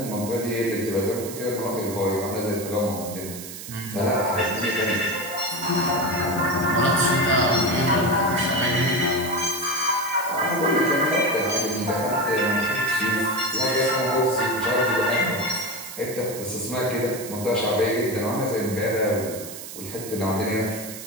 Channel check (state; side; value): noise; right; hiss, 11 dB below the sound